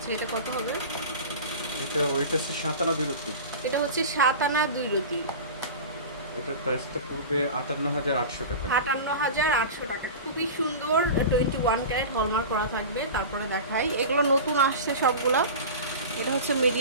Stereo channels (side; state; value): both; inverted; correlation -0.31